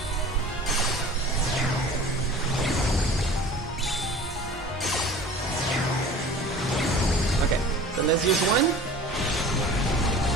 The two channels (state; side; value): normal; both; correlation 0.42